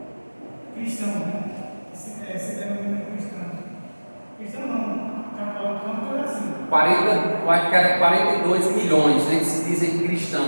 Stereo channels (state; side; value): inverted; both; correlation -1.00